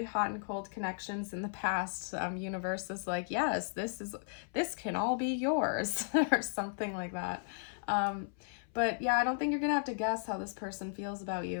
hot and cold connections in the past. Universe is like, yes, this can all be yours or something like that. But yeah, I don't think you're going to have to guess how this person feels about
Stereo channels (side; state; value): right; silent; 54 dB below the other